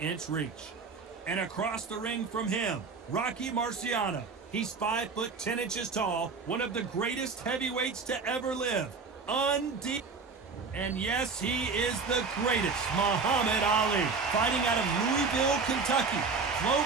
reach. And across the ring from him, Rocky Marciano. He's 5'10" tall, one of the greatest heavyweights to ever live. Undisputed. And yes, he is the greatest, Muhammad Ali, fighting out of Louisville, Kentucky.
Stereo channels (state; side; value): quieter; left; 4.7 dB